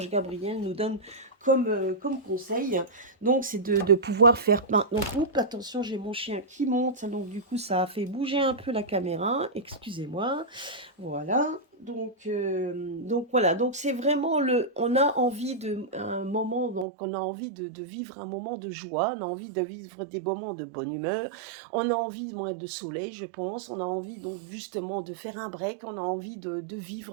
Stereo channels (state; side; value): drops out; left; at 16.9 s